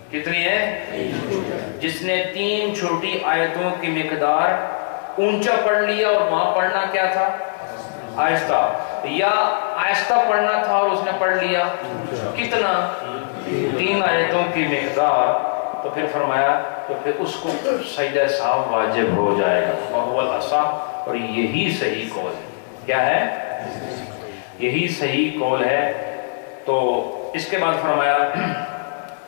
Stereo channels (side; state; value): right; silent; 65 dB below the other